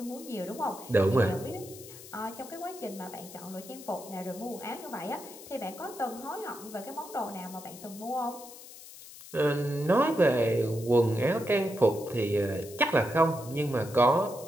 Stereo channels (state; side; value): noise; left; hiss, 16 dB below the sound